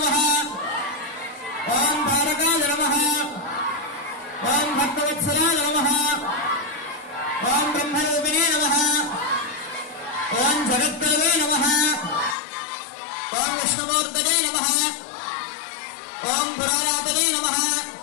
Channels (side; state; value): right; drops out; at 12.4 s